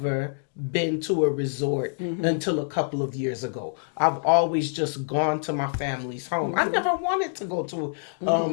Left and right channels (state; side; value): silent; right; digital silence